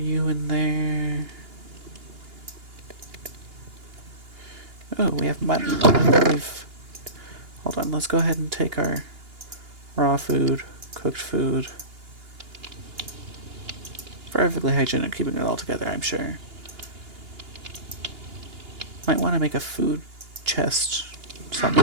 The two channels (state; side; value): late; left; 2.8 ms